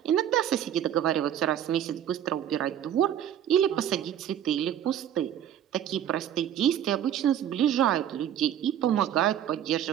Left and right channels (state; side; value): quieter; left; 10.3 dB